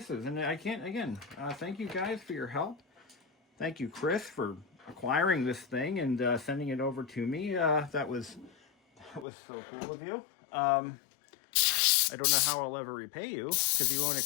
And I can't again. Thank you guys for your help. Thank you, Chris, for acquiring this thing and sending it over to me. That was so cool of you. I don't know how I'll ever repay you because you won't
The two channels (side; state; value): right; drops out; at 9.2 s